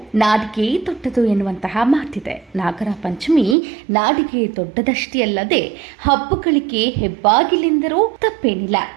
ನಾಡಿಗೆ ದೊಡ್ಡದು ಎನ್ನುವಂತಹ ಮಾತಿದೆ. ನಾಗರ ಪಂಚಮಿ ನಾಡಿಗೆ ದೊಡ್ಡದಷ್ಟೇ ಅಲ್ಲದೆ ಹಬ್ಬಗಳಿಗೆ ಹೆಬ್ಬಾಗಿಲೆಂದರೂ ತಪ್ಪೇನಿಲ್ಲ.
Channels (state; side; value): drops out; left; at 3.6 s